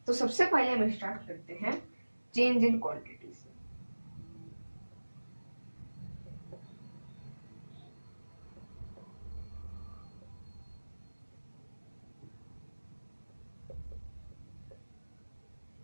तो सबसे पहले हम स्टार्ट करते हैं चेंज इन क्वांटिटी से।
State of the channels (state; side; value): inverted; both; correlation -1.00